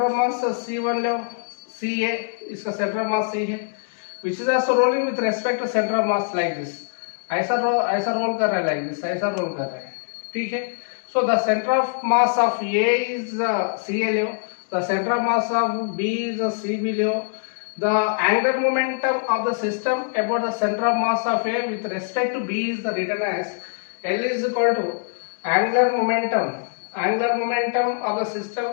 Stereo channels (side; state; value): right; silent; digital silence